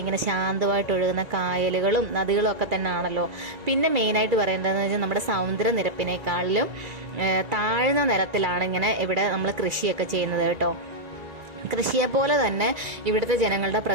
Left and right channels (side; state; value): left; late; 1.9 ms